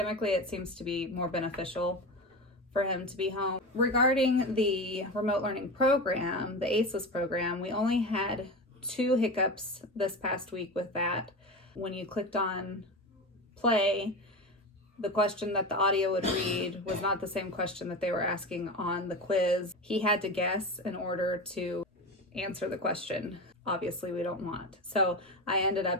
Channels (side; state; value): both; normal; correlation 0.24